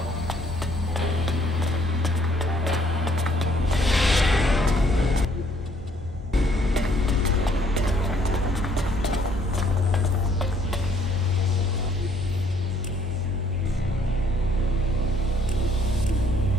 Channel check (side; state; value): both; normal; correlation 0.64